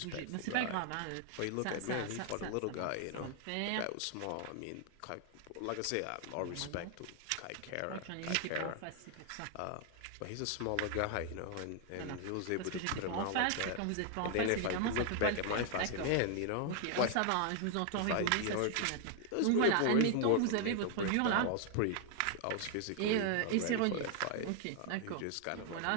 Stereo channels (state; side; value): different; both; correlation 0.00